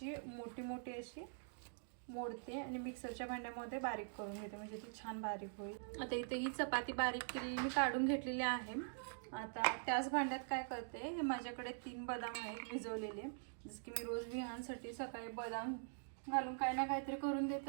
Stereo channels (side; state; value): left; silent; digital silence